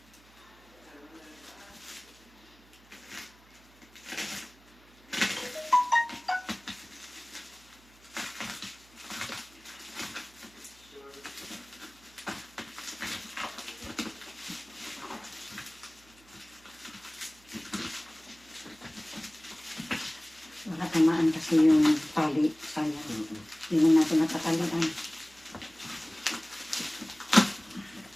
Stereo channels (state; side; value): noise; right; hum, 27 dB below the sound